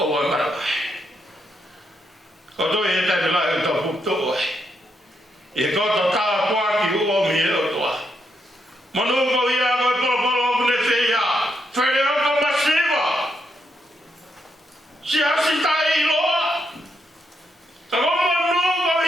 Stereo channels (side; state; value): both; normal; correlation 0.79